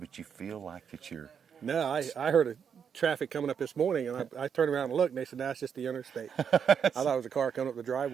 you feel like it's your... No, I heard a traffic coming up this morning, and I turned around and looked, and they said, that's just the interstate. I thought it was a car coming up the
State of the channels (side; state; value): left; quieter; 7.3 dB